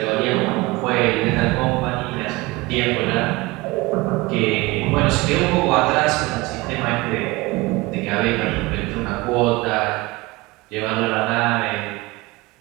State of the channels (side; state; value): left; quieter; 22.0 dB